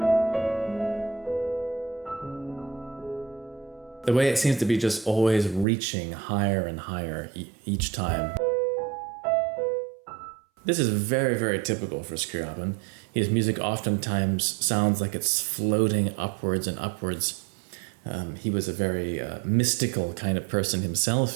The way it seems to be just always reaching higher and higher each time. This is very, very typical for Scriabin. His music oftentimes sounds like it's floating upwards and upwards. He was a very mystical kind of person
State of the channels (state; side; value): drops out; left; at 5.7 s